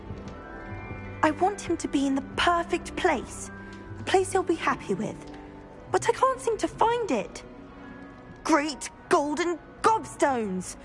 I want him to be in the perfect place. A place he'll be happy with. But I can't seem to find it. Great golden gobstones!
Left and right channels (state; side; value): identical; both; correlation 1.00